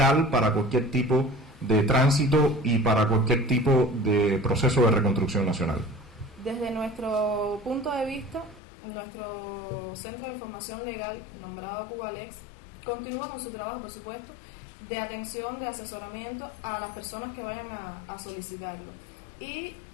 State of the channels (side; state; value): right; drops out; at 8.6 s